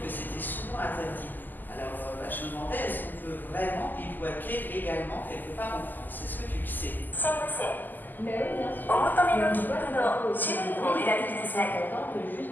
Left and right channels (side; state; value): right; late; 0.087 ms